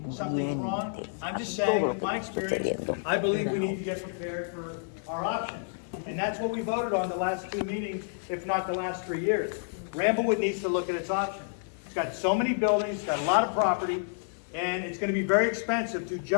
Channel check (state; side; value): silent; right; 56 dB below the other